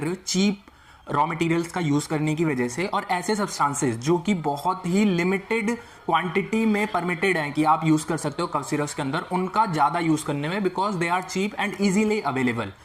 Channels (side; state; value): both; identical; correlation 1.00